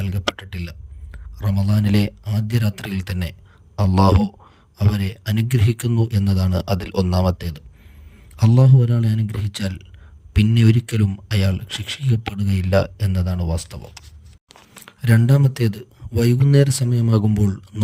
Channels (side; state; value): both; identical; correlation 1.00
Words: റമദാനിലെ ആദ്യ രാത്രിയിൽ തന്നെ അല്ലാഹു അവരെ അനുഗ്രഹിക്കുന്നു എന്നതാണ് അതിൽ ഒന്നാമത്തേത്. അല്ലാഹു ഒരാളെ അനുഗ്രഹിച്ചാൽ പിന്നെ ഒരിക്കലും അയാൾ ശിക്ഷിക്കപ്പെടുകയില്ല എന്നതാണ് വാസ്തവം. രണ്ടാമത്തേത്, വൈകുന്നേര സമയമാകുമ്പോൾ